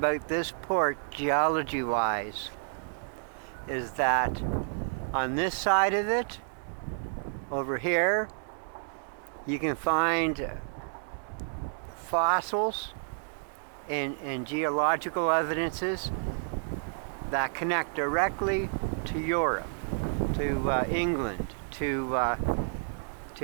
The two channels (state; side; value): silent; left; digital silence